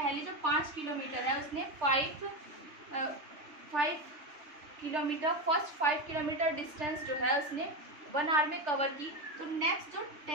जो 5 किलोमीटर है उसने 5 किलोमीटर फर्स्ट 5 किलोमीटर डिस्टेंस जो है उसने 1 आवर में कवर की, तो नेक्स्ट जो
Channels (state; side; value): late; left; 3.4 ms